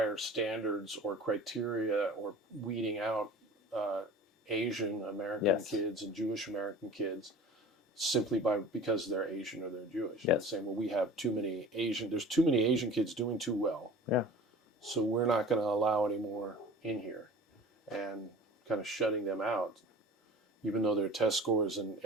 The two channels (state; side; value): normal; both; correlation 0.41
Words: standards or criteria or weeding out Asian American kids and Jewish American kids simply because they're Asian or they're Jewish. Yes. Saying, well, we have there's too many Asian kids doing too well. Yeah. So we're not going to allow any more in here, and kind of shutting them out, even though their test scores and